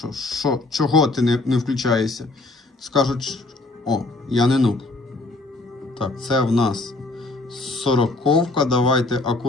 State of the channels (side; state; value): right; quieter; 3.1 dB